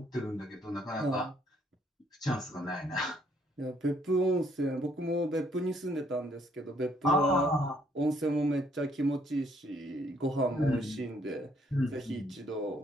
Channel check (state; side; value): normal; both; correlation 0.67